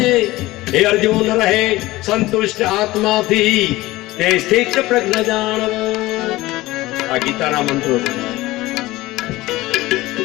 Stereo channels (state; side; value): quieter; right; 18.5 dB